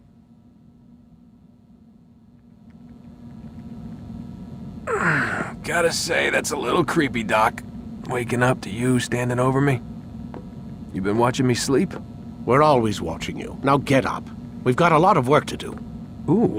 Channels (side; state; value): both; identical; correlation 1.00